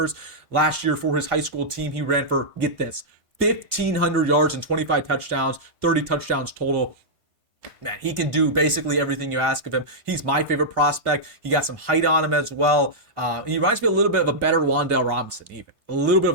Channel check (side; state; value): left; late; 1.6 ms